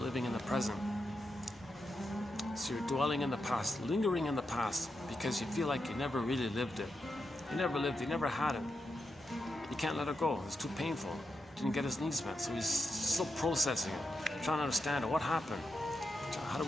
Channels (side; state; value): both; normal; correlation 0.86